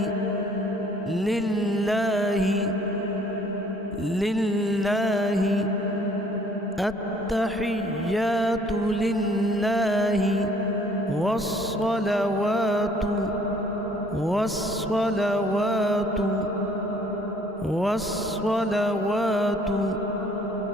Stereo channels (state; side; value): normal; both; correlation 0.59